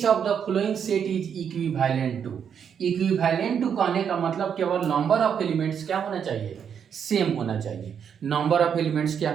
of the following set is equivalent to. Equivalent to कहने का मतलब केवल नंबर ऑफ एलिमेंट्स क्या होना चाहिए? सेम होना चाहिए। नंबर ऑफ एलिमेंट्स क्या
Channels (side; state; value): left; quieter; 7.7 dB